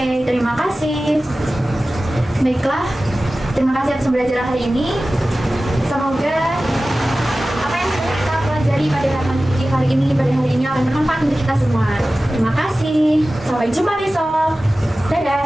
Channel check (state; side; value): normal; both; correlation 0.96